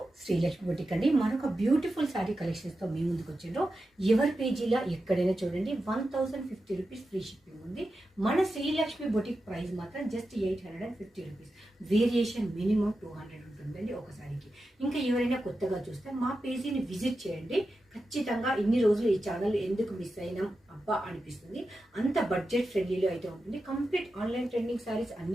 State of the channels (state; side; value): normal; both; correlation 0.91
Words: Srilakshmi boutique అండి. మనొక beautiful sari కలెక్షన్స్తో మీ ముందుకు వచ్చిండ్రు. ఎవరి పేజీలో ఎక్కడైనా చూడండి 1050 రూపీస్ ఫ్రీ షిప్పింగ్ ఉంది. మన శ్రీలక్ష్మి బొటిక్ ప్రైస్ మాత్రం జస్ట్ 850 రూపీస్. వేరియేషన్ మినిమం 200 ఉంటుందండి ఒక శారీకి. ఇంకా ఎవరైనా కొత్తగా చూస్తే మా పేజీని విజిట్ చేయండి. ఖచ్చితంగా ఇన్ని రోజులు ఈ ఛానల్ ఎందుకు మిస్ అయినాం అబ్బా అనిపిస్తుంది. అంత బడ్జెట్ ఫ్రెండ్లీలో అయితే ఉంటుంది. కంప్లీట్ ఆన్లైన్ ట్రెండింగ్ శారీస్